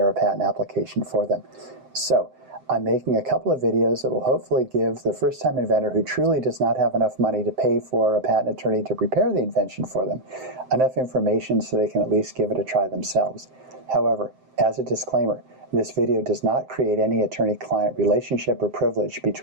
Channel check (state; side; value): late; left; 7.7 ms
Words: a patent application for them. So I'm making a couple of videos that will hopefully give the first-time inventor who truly does not have enough money to pay for a patent attorney to prepare the invention for them enough information so they can at least give it a try themselves. However, as a disclaimer, this video does not create any attorney-client relationship or privilege